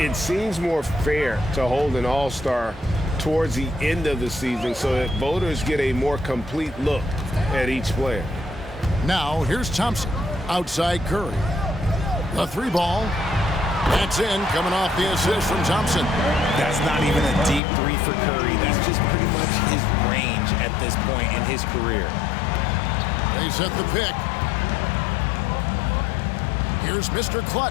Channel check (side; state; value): right; drops out; at 17.6 s